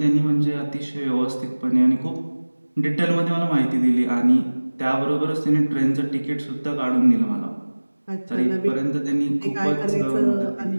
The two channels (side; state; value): both; inverted; correlation -1.00